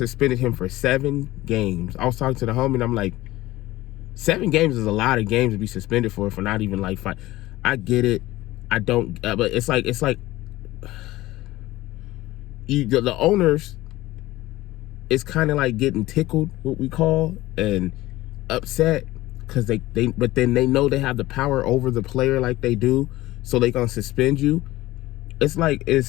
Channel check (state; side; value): quieter; right; 17.5 dB